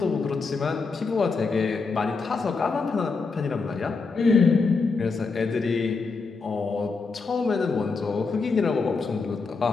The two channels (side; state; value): right; quieter; 4.4 dB